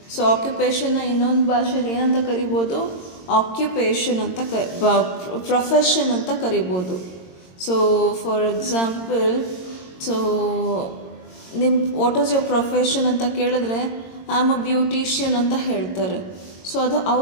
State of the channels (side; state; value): right; late; 22 ms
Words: So ಆಕ್ಯುಪೇಷನ್ನ ಇನ್ನೊಂದು ಭಾಷೆಯಲ್ಲಿ ಏನಂತ ಕರಿಬೋದು? ಆಕ್ಯುಪೇಷನ್ ಅಂತ ಪ್ರೊಫೆಷನ್ ಅಂತ ಕರಿಬೋದು. So for example, so what is your profession ಅಂತ ಕೇಳಿದ್ರೆ ಐ ಆಮ್ ಅ ಬ್ಯೂಟಿಷಿಯನ್ ಅಂತ ಹೇಳ್ತಾರೆ. ಸೊ ಅದು